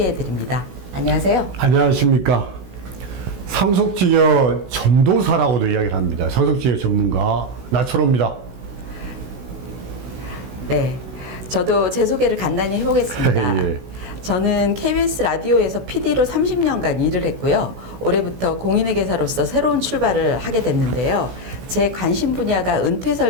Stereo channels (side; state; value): left; late; 16 ms